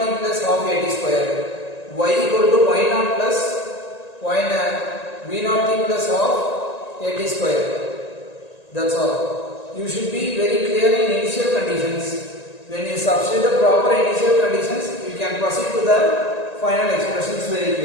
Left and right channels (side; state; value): right; late; 1.9 ms